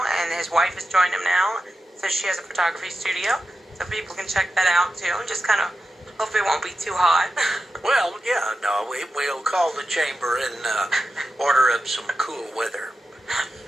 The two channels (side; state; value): both; normal; correlation 0.91